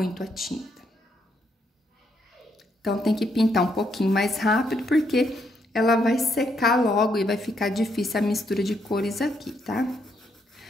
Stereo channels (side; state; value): both; normal; correlation 0.75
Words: a tinta. Então, tem que pintar um pouquinho mais rápido, porque ela vai secar logo e vai ficar difícil a mistura de cores aqui, tá?